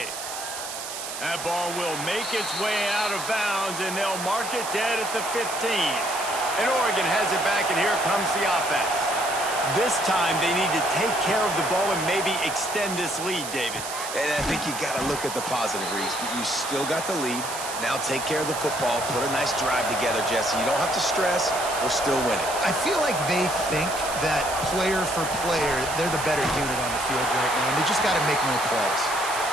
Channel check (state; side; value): noise; right; hiss, 8 dB below the sound